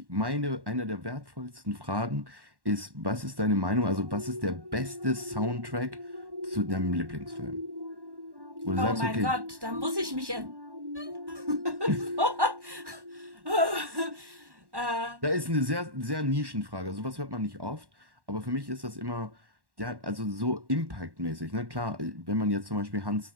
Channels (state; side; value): late; left; 1.1 ms